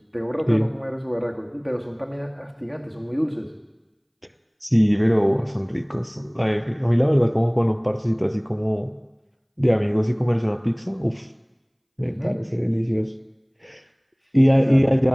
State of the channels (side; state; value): both; identical; correlation 1.00